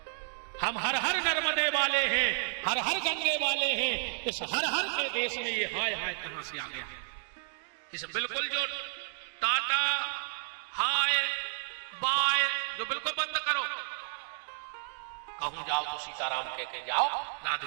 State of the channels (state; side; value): silent; left; digital silence